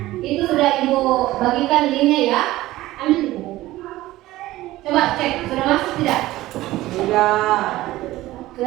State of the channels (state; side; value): quieter; left; 16.7 dB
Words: Itu sudah Ibu bagikan linknya ya. Ambil. Coba cek, sudah masuk tidak? Tidak.